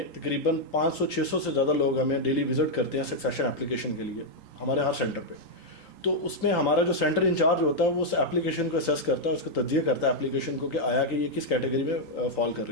تقریباً 500-600 سے زیادہ لوگ ہمیں ڈیلی وزٹ کرتے ہیں سکسیشن اپلیکیشن کے لیے ہمارے ہر سینٹر پہ. تو اس میں ہمارا جو سینٹر انچارج ہوتا ہے وہ اس اپلیکیشن کو اسیس کرتا ہے، اس کو تجزیہ کرتا ہے اپلیکیشن کو کہ آیا کہ یہ کس کیٹیگری میں فال کر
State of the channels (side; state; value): right; late; 3.8 ms